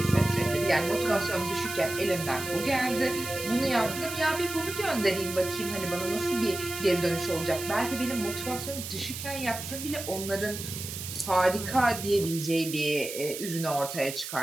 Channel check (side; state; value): right; noise; hiss, 8 dB below the sound